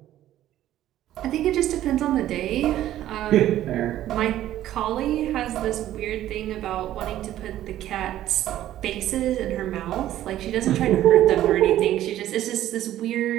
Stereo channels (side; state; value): left; quieter; 13.0 dB